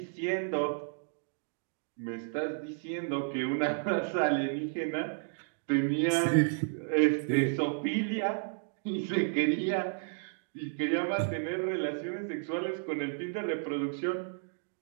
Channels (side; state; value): left; silent; digital silence